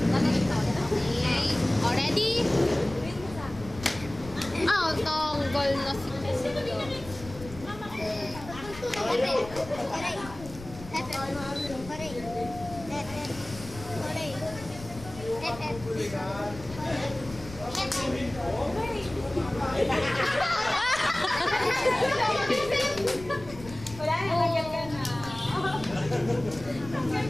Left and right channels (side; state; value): left; noise; rumble, 15 dB below the sound